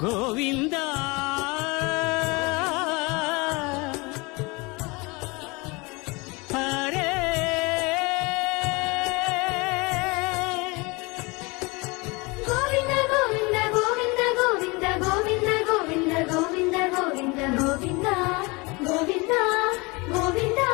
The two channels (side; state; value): right; quieter; 26.2 dB